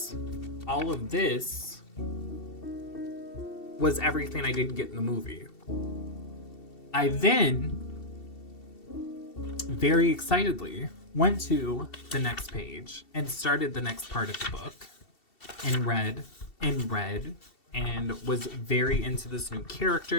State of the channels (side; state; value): right; late; 2.7 ms